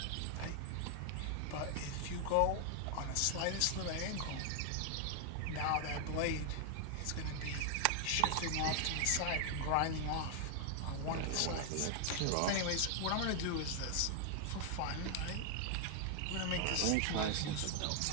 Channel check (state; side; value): different; both; correlation 0.00